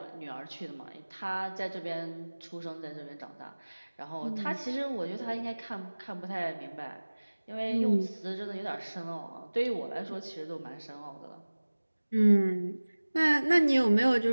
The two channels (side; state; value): both; inverted; correlation -1.00